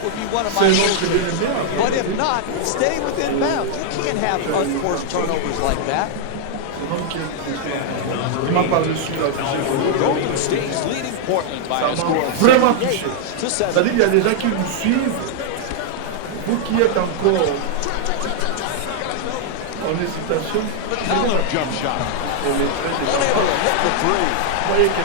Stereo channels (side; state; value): both; different; correlation -0.01